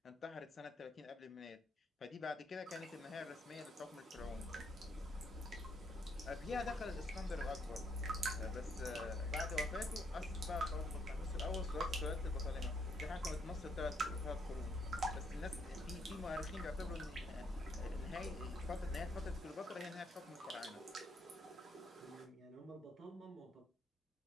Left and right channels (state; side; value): normal; both; correlation 0.72